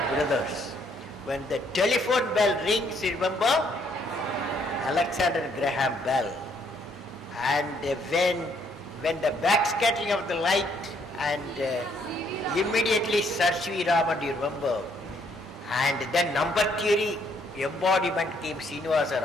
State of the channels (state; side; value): normal; both; correlation 0.68